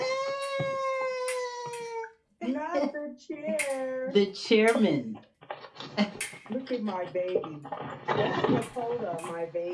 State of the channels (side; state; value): both; identical; correlation 1.00